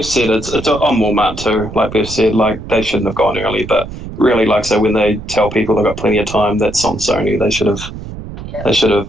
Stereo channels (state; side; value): noise; right; rumble, 11 dB below the sound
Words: said, it's on Walmart too. Like Beth said, like they shouldn't have gone early, but really, like so when they tell people they've got plenty of time, that's on Sony. They should have